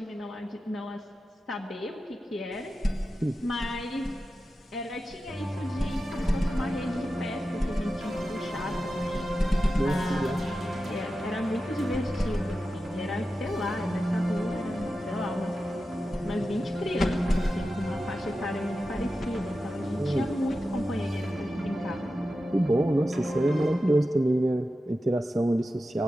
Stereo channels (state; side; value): normal; both; correlation 0.92